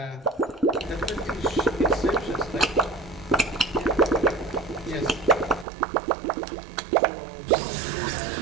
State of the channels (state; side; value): drops out; left; at 5.7 s